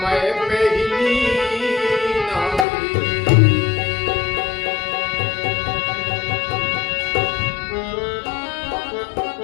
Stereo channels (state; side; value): drops out; right; at 2.7 s